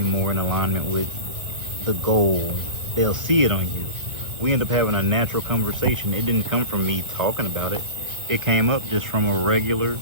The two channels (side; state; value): left; late; 1.2 ms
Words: more in alignment with the goal. They'll see it on you. We end up having a natural conversation. It didn't come from me talking about it. It came up just from a regular